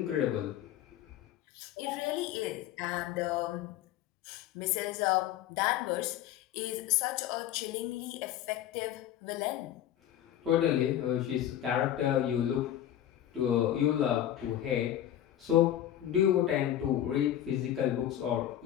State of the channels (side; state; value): right; quieter; 11.7 dB